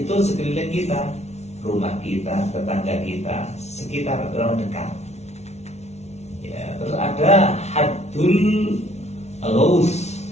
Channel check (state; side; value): late; right; 0.32 ms